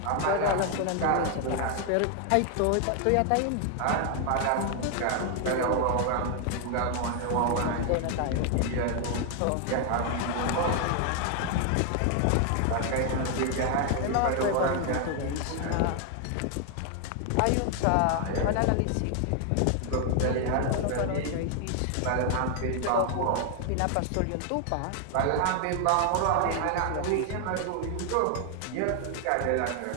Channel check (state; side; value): different; both; correlation 0.00